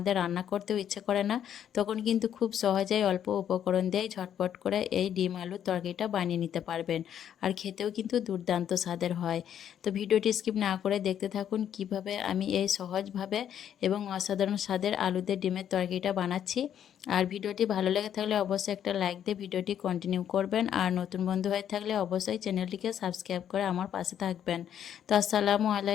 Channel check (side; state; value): right; quieter; 9.6 dB